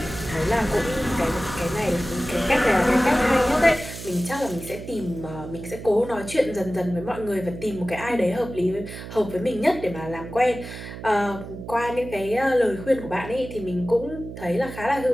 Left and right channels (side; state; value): right; noise; hum, 11 dB below the sound